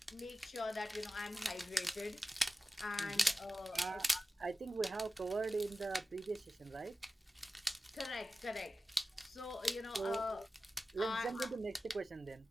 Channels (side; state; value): both; normal; correlation 0.94